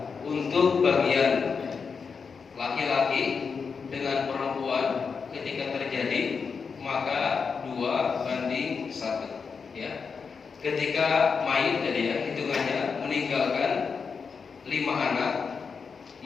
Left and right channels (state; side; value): quieter; right; 5.6 dB